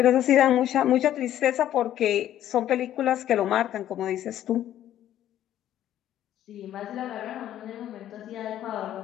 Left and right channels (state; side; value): quieter; right; 11.9 dB